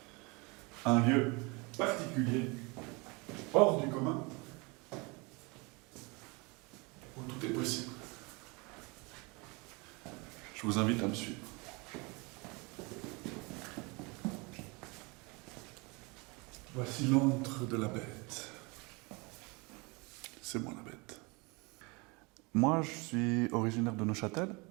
Un lieu particulier, hors du commun, où tout est possible. Je vous invite à me suivre. Voici l'antre de la bête. C'est moi la bête. Moi, je suis originaire de Neuchâtel.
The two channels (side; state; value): left; quieter; 27.7 dB